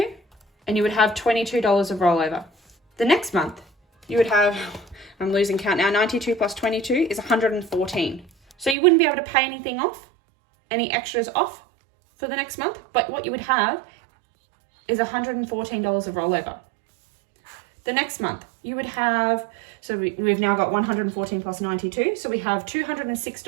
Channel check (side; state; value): left; drops out; at 8.8 s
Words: and you would have $22 of rollover. The next month, you would have, I'm losing count now, 92 plus 22 is 114. So you wouldn't be able to pay anything off, any extras off for the next month, but what you would have is $114 of rollover. The next month, you would have, so we've now got 114 plus 92, so we have